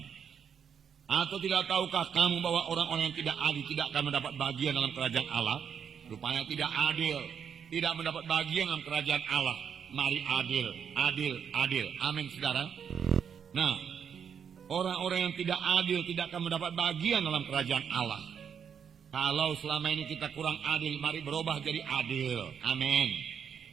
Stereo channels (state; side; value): quieter; left; 7.5 dB